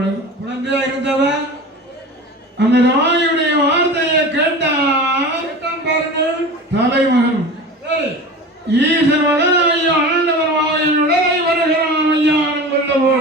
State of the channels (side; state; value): both; normal; correlation 0.34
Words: குழந்தையா இருந்தவன் அந்த தாயுடைய வார்த்தையை கேட்டான் பாருங்கள் தலைமகன் ஈசன் மகனாகி ஆண்டவர் வாயின் உடலை வருகிறான் ஐயான் கொல்ல